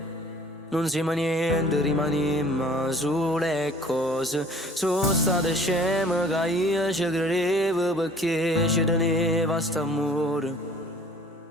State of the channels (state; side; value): normal; both; correlation 0.51